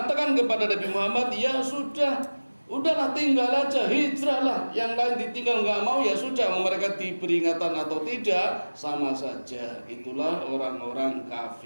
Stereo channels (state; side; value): inverted; both; correlation -1.00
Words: kepada Nabi Muhammad, ya sudah, udahlah tinggal aja, hijrahlah. Yang lain ditinggal nggak mau ya sudah, mereka diberi peringatan atau tidak sama saja. Itulah orang-orang